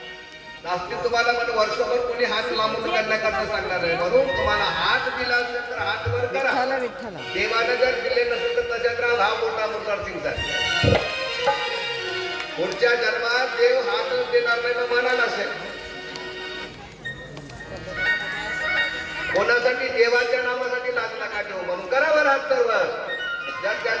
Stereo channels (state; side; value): identical; both; correlation 1.00